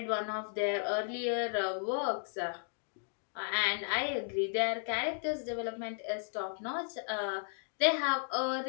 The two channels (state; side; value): silent; right; digital silence